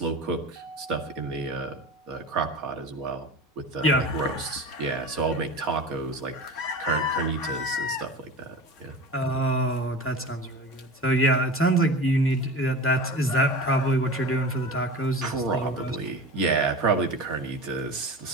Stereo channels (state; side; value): normal; both; correlation 0.32